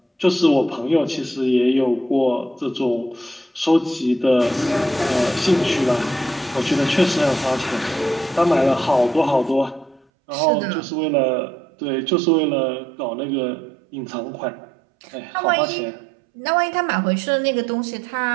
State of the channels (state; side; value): drops out; left; at 10.1 s